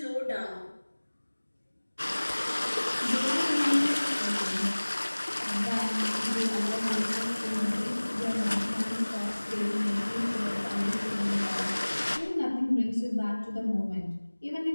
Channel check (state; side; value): inverted; both; correlation -1.00